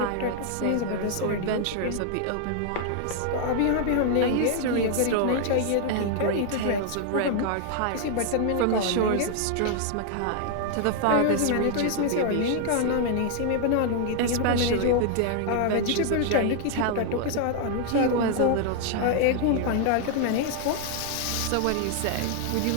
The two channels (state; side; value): different; both; correlation 0.00